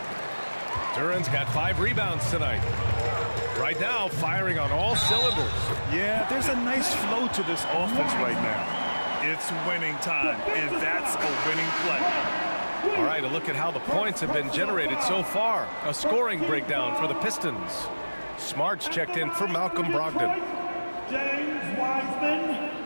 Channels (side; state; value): both; inverted; correlation -1.00